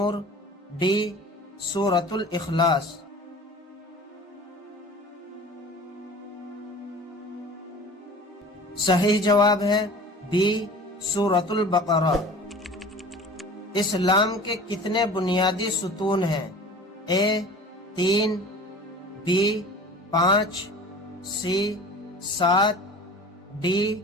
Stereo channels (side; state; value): both; normal; correlation 0.41